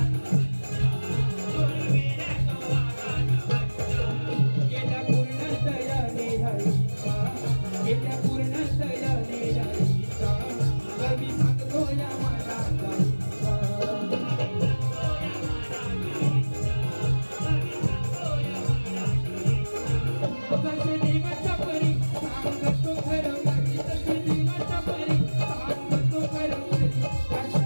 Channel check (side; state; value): both; inverted; correlation -1.00